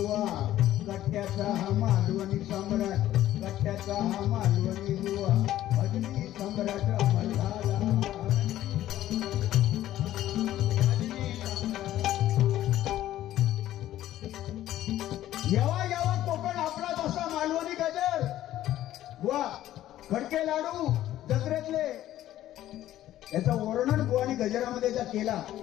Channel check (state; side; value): quieter; right; 13.4 dB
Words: कट्ट्याचा हा मालवणी सम्राट, कट्ट्याचा हा मालवणी बुवा भजनी सम्राट अमर झाला. येवा येवा कोकण आपला जसा मालवणी गजर बुवा, खडके लाडू जत्रेतले, याचा वर्णन बुवानी गजरामध्ये केला.